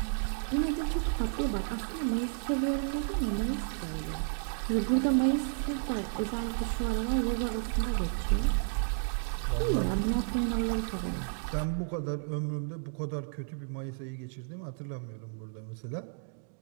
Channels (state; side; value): silent; left; 56 dB below the other